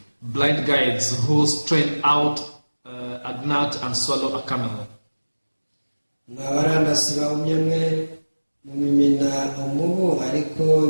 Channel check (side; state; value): both; inverted; correlation -1.00